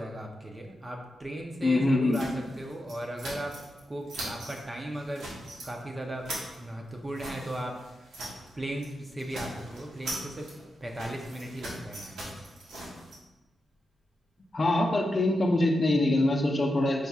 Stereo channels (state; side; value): normal; both; correlation 0.88